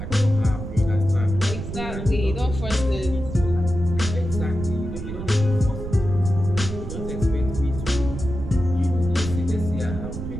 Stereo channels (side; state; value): right; noise; rumble, 7 dB below the sound